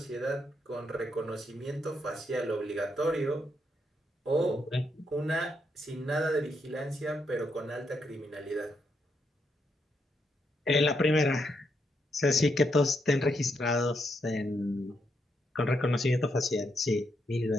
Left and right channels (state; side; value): normal; both; correlation 0.79